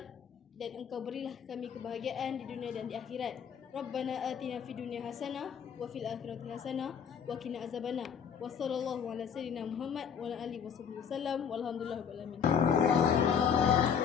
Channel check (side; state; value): right; quieter; 7.4 dB